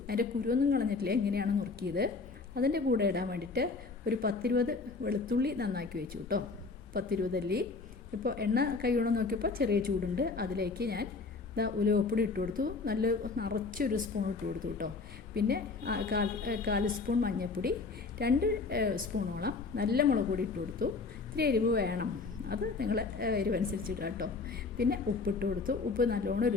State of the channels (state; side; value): quieter; right; 4.2 dB